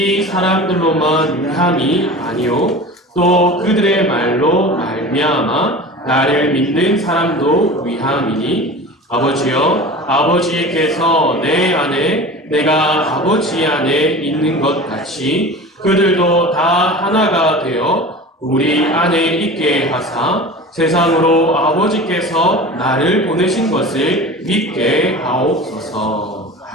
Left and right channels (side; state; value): both; normal; correlation 0.35